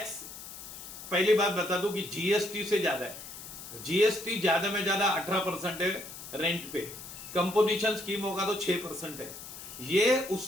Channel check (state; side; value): noise; left; hiss, 12 dB below the sound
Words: पहली बात बता दूं कि जीएसटी से ज्यादा है। जीएसटी ज्यादा में ज्यादा 18% है रेंट पे, कंपोजिशन स्कीम होगा तो 6% है। ये